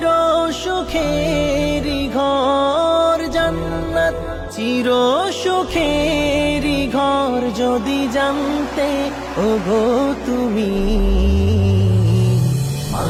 সুখের ঘর, জান্নাত চির সুখের ঘর যদি জানতে ওগো তুমি।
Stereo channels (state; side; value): identical; both; correlation 1.00